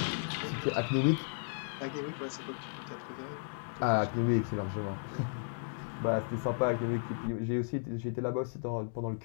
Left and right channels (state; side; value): silent; right; digital silence